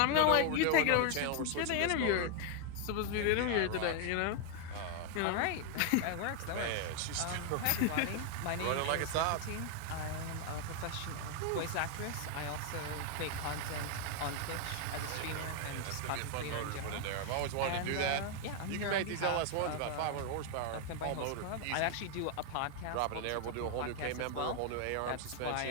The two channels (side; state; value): both; different; correlation 0.00